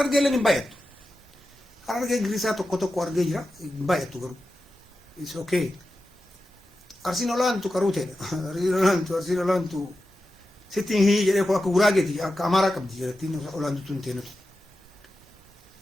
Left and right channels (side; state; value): both; normal; correlation 0.92